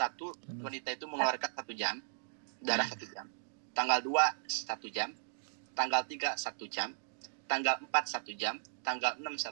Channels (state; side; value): silent; left; digital silence